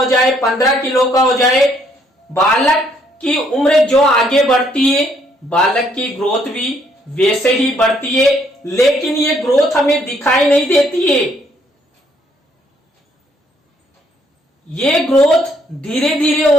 जाए, 15 किलो का हो जाए। बालक की उम्र जो आगे बढ़ती है बालक की ग्रोथ भी वैसे ही बढ़ती है, लेकिन ये ग्रोथ हमें दिखाई नहीं देती है। ये ग्रोथ धीरे धीरे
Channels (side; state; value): both; normal; correlation 0.68